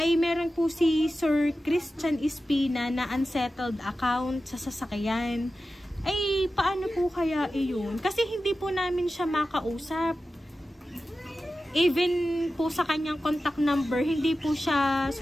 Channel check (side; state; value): both; normal; correlation 0.93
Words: meron po si Sir Christian Espina na unsettled account sa sasakyan. Ay paano po kaya iyon? Kasi hindi po namin siya makausap. Even po sa kanyang contact number, hindi po siya